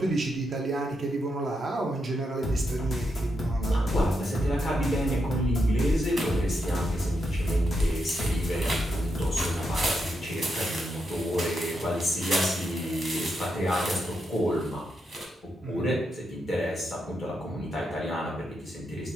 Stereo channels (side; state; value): both; normal; correlation 0.83